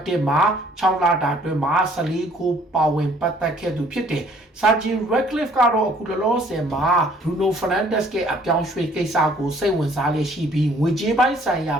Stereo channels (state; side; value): normal; both; correlation 0.59